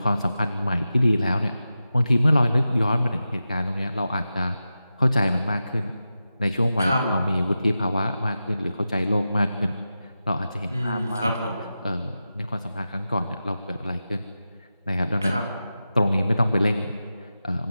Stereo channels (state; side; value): inverted; both; correlation -0.92